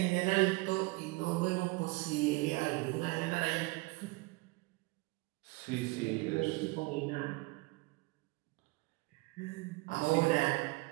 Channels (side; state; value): left; quieter; 23.8 dB